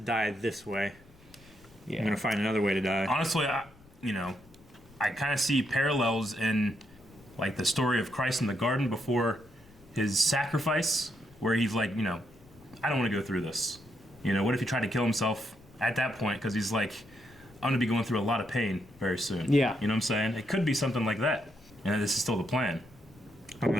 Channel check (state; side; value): noise; left; rumble, 26 dB below the sound